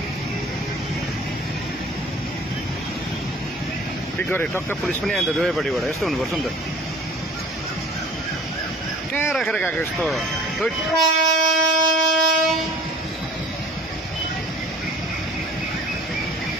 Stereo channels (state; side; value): normal; both; correlation 0.48